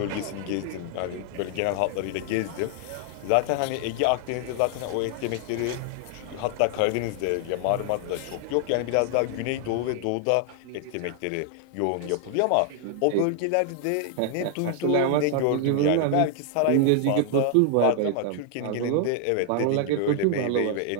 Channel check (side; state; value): both; different; correlation 0.00